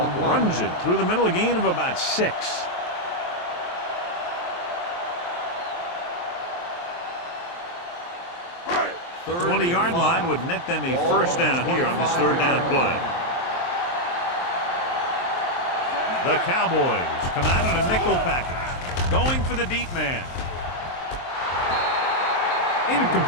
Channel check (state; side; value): late; right; 23 ms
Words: runs it through the middle, a gain of about 6. The 20-yard line would net them a first down here on this third down play. The Cowboys come out in a nickel package, going for the deep man.